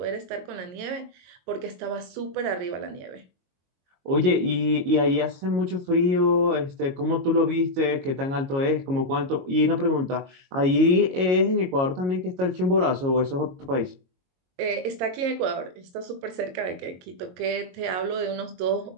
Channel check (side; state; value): left; late; 22 ms